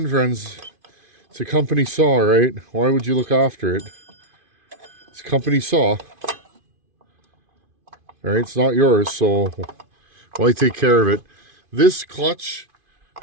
friends, it's a company saw, right? Why would you look after it? It's a company saw. All right, it's not yours, so why take care of it? This clutch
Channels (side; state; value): left; late; 2.5 ms